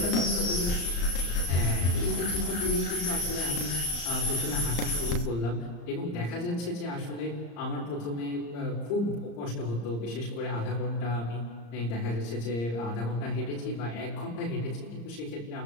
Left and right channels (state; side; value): late; right; 34 ms